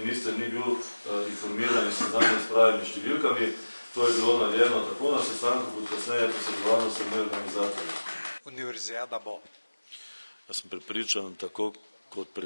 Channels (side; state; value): both; inverted; correlation -1.00